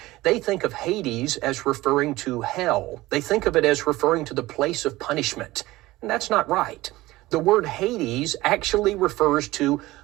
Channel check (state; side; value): quieter; left; 18.5 dB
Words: they think of Hades as referring to hell. They think of it as referring to the place of punishment. And that's not right. The word Hades actually refers to